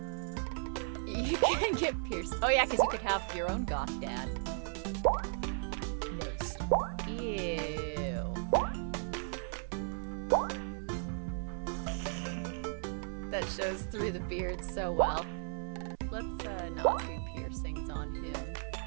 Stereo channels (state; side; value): silent; left; 54 dB below the other